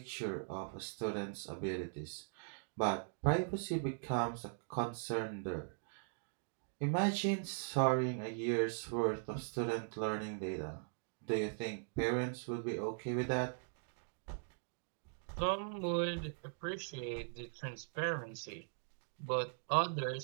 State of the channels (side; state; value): left; silent; digital silence